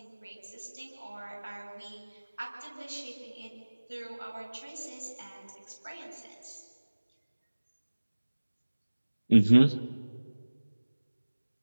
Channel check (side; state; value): both; inverted; correlation -1.00